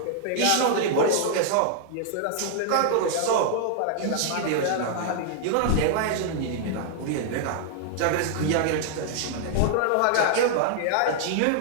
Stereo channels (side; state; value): both; different; correlation -0.01